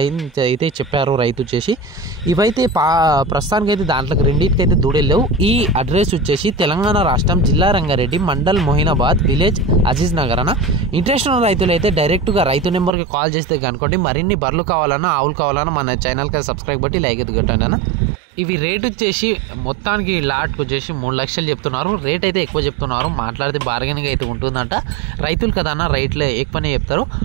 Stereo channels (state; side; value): drops out; left; at 12.9 s